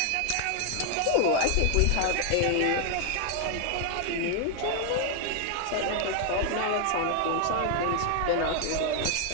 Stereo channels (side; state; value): both; different; correlation 0.00